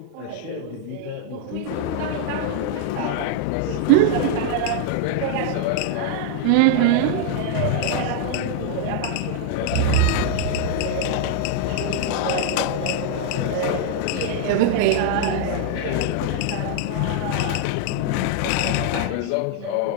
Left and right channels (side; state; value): both; different; correlation -0.01